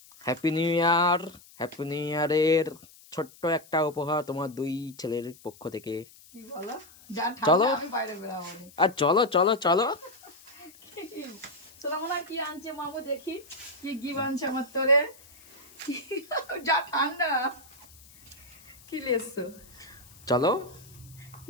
Happy new year. Happy new ইয়ারের ছোট্ট একটা উপহার তোমার দুই ছেলের পক্ষ থেকে। কি বলো? যা চলো। ঠান্ডা আমি বাইরে বেরাবো না। আর চলো চলো চলো। শোনা মনে কি আনছে মামু, দেখি কি কি আনছে আমার তোরে। যা ঠান্ডা। কি লেসছো? চলো।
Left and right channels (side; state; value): left; noise; hiss, 23 dB below the sound